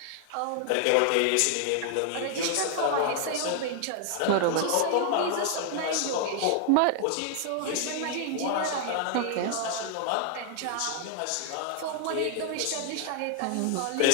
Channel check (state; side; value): different; both; correlation 0.00